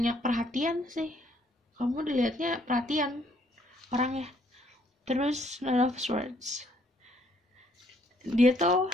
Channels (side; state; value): both; normal; correlation 0.67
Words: perhatian sih, kamu dilihatnya perhatian orangnya. Terus Nine of Swords, dia tuh